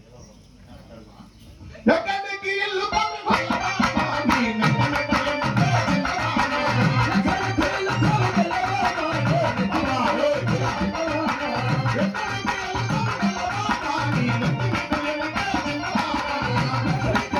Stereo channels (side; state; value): both; identical; correlation 1.00